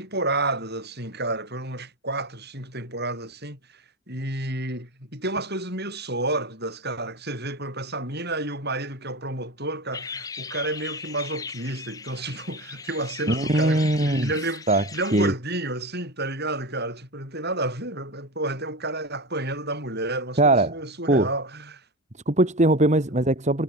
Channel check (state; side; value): normal; both; correlation 0.23